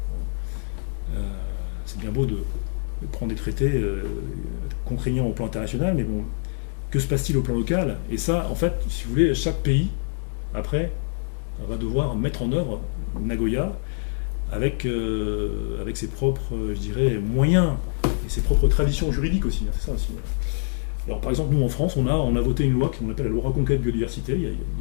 C'est bien beau de prendre des traités contraignants au plan international, mais bon, que se passe-t-il au plan local? Et ça, en fait, si vous voulez, chaque pays, après, on va devoir mettre en œuvre Nagoya avec ses propres, je dirais, moyens et ses propres traditions juridiques aussi. C'est ça aussi. Alors, par exemple, nous, en France, on a voté une loi qu'on appelle la loi Reconquête Biodiversité, il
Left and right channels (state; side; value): silent; right; 62 dB below the other